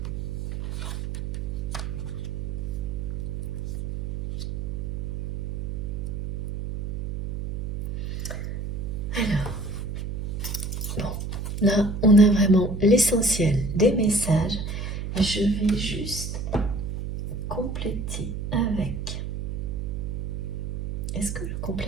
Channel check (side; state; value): right; noise; hum, 4 dB below the sound